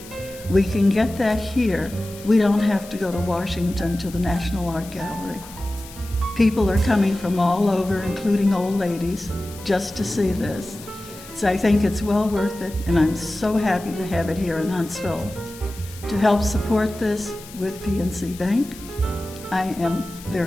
we can get that here. We don't have to go to Washington to the National Art Gallery. People are coming from all over, including old ladies, just to see this. So I think it's well worth it, and I'm so happy to have it here in Huntsville. To help support this with PNC Bank, I am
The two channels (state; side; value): noise; left; hiss, 18 dB below the sound